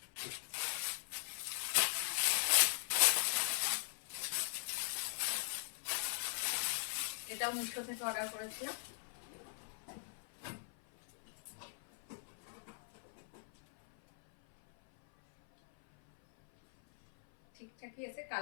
এটাও মিশো থেকে অর্ডার করেছিলাম। ঠিকঠাকই এসে,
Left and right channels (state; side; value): silent; right; 51 dB below the other